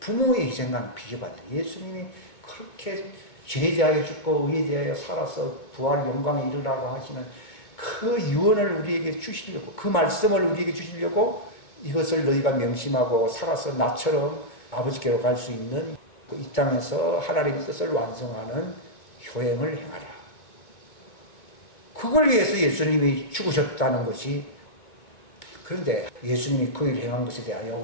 부모의 희생과는 비교가 안 돼요. 예수님이 그렇게 죄에 대하여 죽고 의에 대하여 살아서 부활 영광에 이르라고 하시는 그 유언을 우리에게 주시려고, 그 말씀을 우리에게 주시려고 이것을 너희가 명심하고 살아서 나처럼 아버지께로 갈 수 있는 이 땅에서 하나님의 뜻을 완성하는 효행을 행하라. 그걸 위해서 예수님이 죽으셨다는 것이, 그런데 예수님이 그 일을 행한 것에 대하여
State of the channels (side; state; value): right; late; 2.3 ms